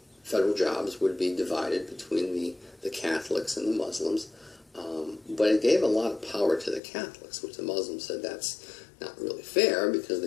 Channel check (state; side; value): drops out; right; at 6.8 s